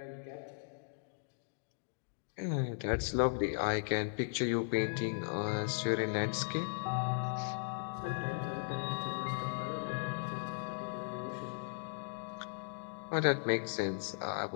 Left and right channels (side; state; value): right; silent; digital silence